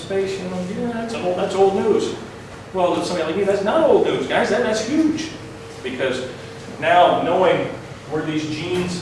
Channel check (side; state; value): both; identical; correlation 1.00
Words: you know, yeah, that's old news. Well, to somebody like me, that's not old news, guys. That's huge. Because now knowing where these genes,